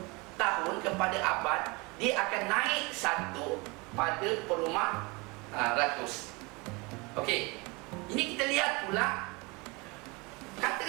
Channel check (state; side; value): quieter; left; 26.8 dB